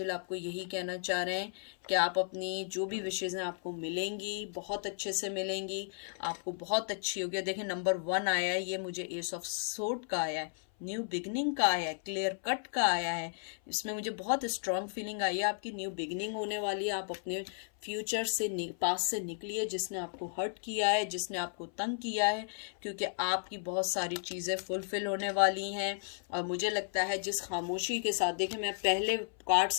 आपको यही कहना चाह रहे हैं कि आप अपनी जो भी विशेज़ हैं आपको मिलेंगी, बहुत अच्छे से मिलेंगी, आपको बहुत अच्छी होगी। देखिए नंबर 1 आया है, ये मुझे एस ऑफ सोर्ड का आया है, न्यू बिगनिंग का आया है, क्लियर कट का आया है। इसमें मुझे बहुत स्ट्रांग फीलिंग आई है, आपकी न्यू बिगनिंग होने वाली है। आप अपने फ्यूचर से पास से निकलिए, जिसने आपको हर्ट किया है, जिसने आपको तंग किया है, क्योंकि आपकी बहुत सारी चीज़ें फुलफिल होने वाली हैं। और मुझे लगता है जिस खामोशी के साथ, देखिए मैं पहले कार्ड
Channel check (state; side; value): silent; right; 55 dB below the other